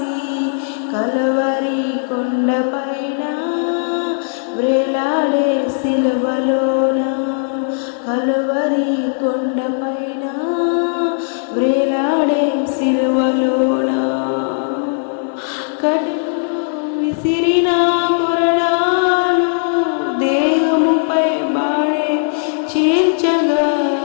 కల్వరి కొండపైన వ్రేలాడే సిలువలోన, కల్వరి కొండపైన వ్రేలాడే సిలువలోన, కఠిన విసిరిన కొరడాలు దేహముపై బాడే చీల్చగా,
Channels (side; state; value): right; silent; digital silence